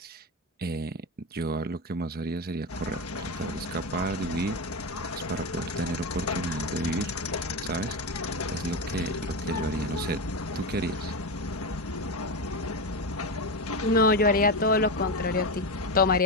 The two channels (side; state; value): both; normal; correlation 0.16